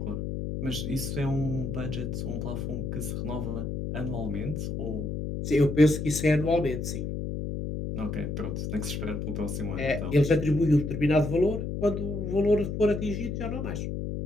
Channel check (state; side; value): noise; left; hum, 3 dB below the sound